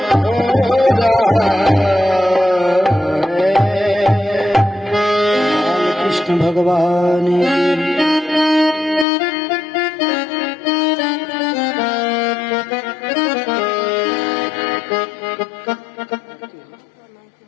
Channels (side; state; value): right; drops out; at 9.1 s